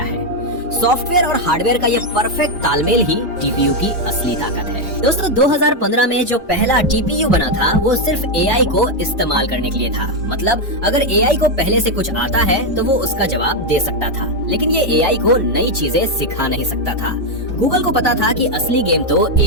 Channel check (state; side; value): normal; both; correlation 0.03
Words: है। सॉफ्टवेयर और हार्डवेयर का ये परफेक्ट तालमेल ही टीपीयू की असली ताकत है। दोस्तों 2015 में जो पहला टीपीयू बना था वो सिर्फ एआई को इस्तेमाल करने के लिए था। मतलब अगर एआई को पहले से कुछ आता है तो वो उसका जवाब दे सकता था, लेकिन ये एआई को नई चीजें सिखा नहीं सकता था। गूगल को पता था कि असली गेम तो